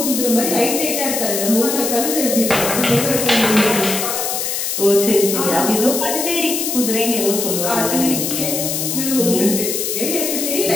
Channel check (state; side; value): noise; left; hiss, 2 dB below the sound